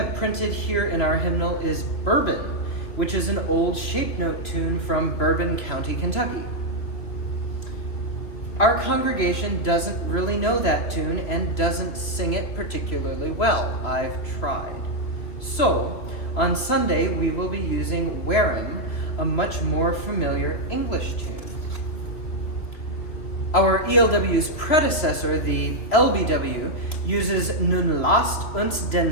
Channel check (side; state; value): right; late; 3.0 ms